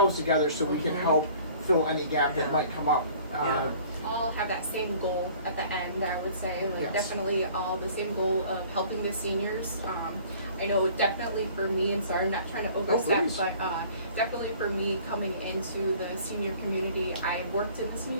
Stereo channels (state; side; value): inverted; both; correlation -0.51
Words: together so we can help fill any gap that might come up. All have that same goal at the end, I would say. Like Yes. definitely all the same goal of helping the seniors. I know definitely for me, and sorry, I'm not trying to overstep, please. but definitely for me coming into the senior community, I worked in the